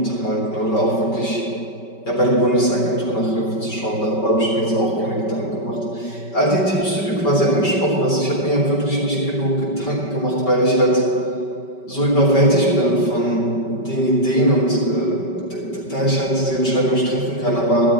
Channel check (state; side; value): late; right; 5.2 ms